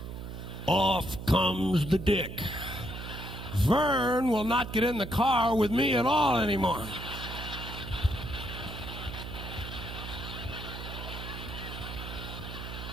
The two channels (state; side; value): noise; right; hum, 9 dB below the sound